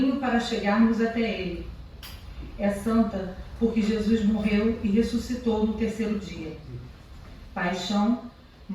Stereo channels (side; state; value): both; identical; correlation 1.00